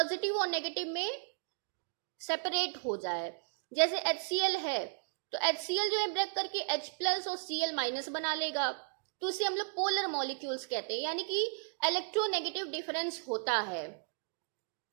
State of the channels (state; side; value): silent; left; digital silence